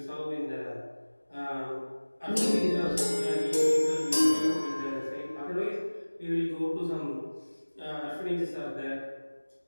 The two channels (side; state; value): both; inverted; correlation -1.00